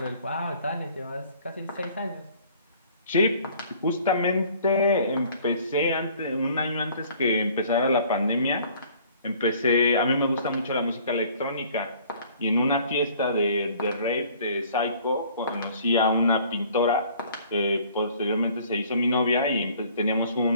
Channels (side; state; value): both; inverted; correlation -0.55